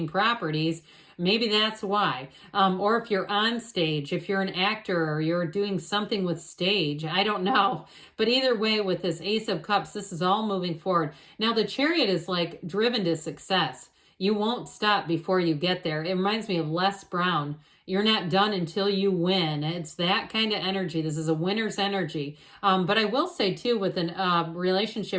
properties, maybe that's why. Or if you're on stage, if you're an actor or you're doing something with stage, I don't know. But either way, with this Ace of Cups, this is all moving forward. Now, the Chariot is like driven to success. You won't stop before you get there. It reminds me of Les Brown. You're not done until you win. It's that kind of energy. This is a winner's energy. But I will say too, with a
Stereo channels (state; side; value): identical; both; correlation 1.00